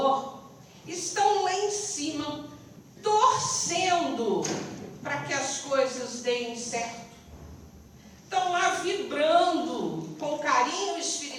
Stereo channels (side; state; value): both; identical; correlation 1.00